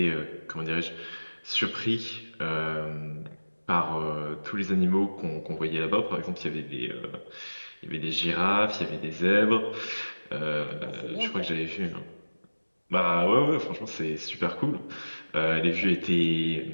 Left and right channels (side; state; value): both; inverted; correlation -1.00